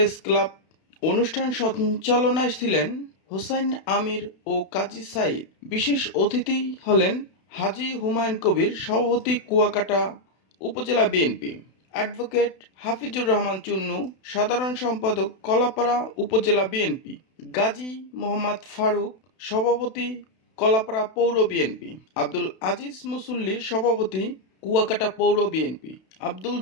ক্লাব। অনুষ্ঠান সঞ্চালনায় ছিলেন হোসাইন আমির ও কাজী সাইদ। বিশেষ অতিথি হলেন হাজী হুমায়ুন কবির, সভাপতি কুয়াকাটা উপজেলা বিএনপি, অ্যাডভোকেট হাফিজুর রহমান চুন্নু, সাধারণ সম্পাদক কলাপাড়া উপজেলা বিএনপি, গাজী মোহাম্মদ ফারুক, সভাপতি কলাপাড়া পৌর বিএনপি, আব্দুল আজিজ মুসল্লি, সভাপতি কুয়াকাটা পৌর বিএনপি, আব্দুল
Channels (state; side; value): late; right; 32 ms